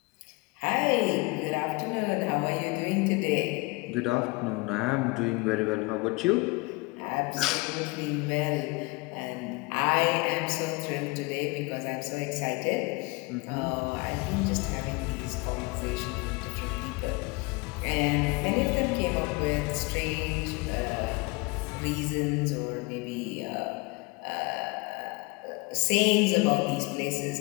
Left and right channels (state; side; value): quieter; right; 26.4 dB